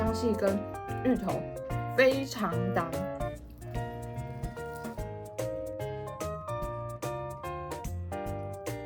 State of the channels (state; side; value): identical; both; correlation 1.00